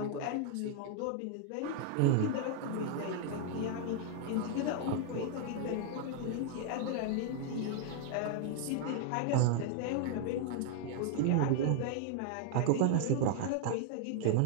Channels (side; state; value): both; different; correlation 0.00